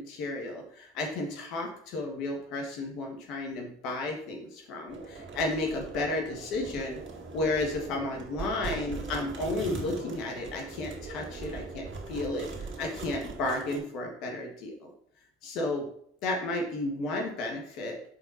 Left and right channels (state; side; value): normal; both; correlation 0.41